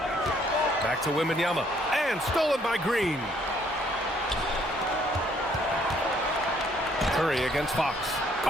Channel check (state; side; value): normal; both; correlation 0.65